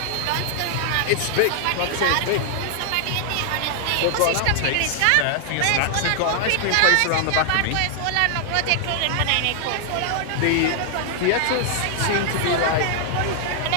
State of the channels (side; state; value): both; different; correlation 0.00